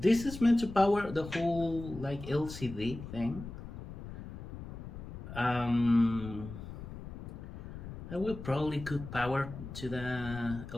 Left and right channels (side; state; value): left; noise; rumble, 11 dB below the sound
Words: is meant to power the whole like LCD thing. I will probably could power to the